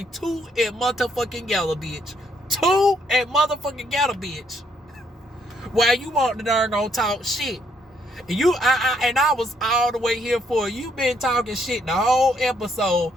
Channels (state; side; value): normal; both; correlation 0.71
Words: to and motherfucking yellow, bitch. To and motherfucking yellow, bitch. While you want the darn talk shit. And I was all the way here for it. You been talking shit the whole episode.